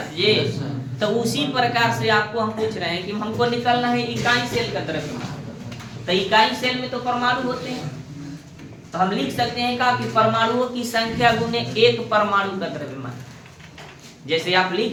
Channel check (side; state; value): both; identical; correlation 1.00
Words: ये। तो उसी प्रकार से आपको हम पूछ रहे हैं कि हमको निकालना है इकाई सेल का द्रव्यमान। तो इकाई सेल में तो परमाणु होते हैं, तो हम लिख सकते हैं का कि परमाणुओं की संख्या गुने एक परमाणु का द्रव्यमान। जैसे आप